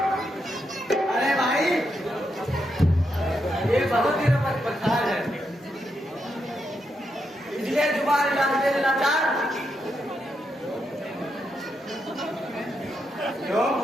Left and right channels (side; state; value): both; normal; correlation 0.82